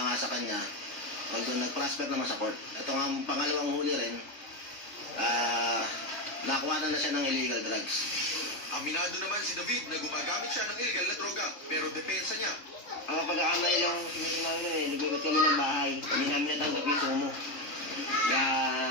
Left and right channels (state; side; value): late; right; 3.4 ms